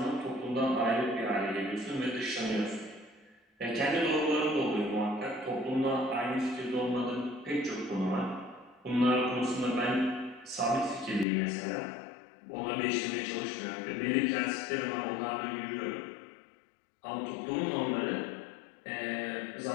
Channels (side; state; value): right; drops out; at 11.2 s